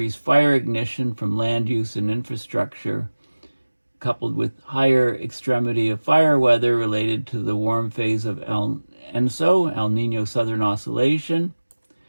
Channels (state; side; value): inverted; both; correlation -1.00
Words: fire ignition from land use and infrastructure, coupled with higher extremity of fire weather related to the warm phase of El Niño Southern Oscillation,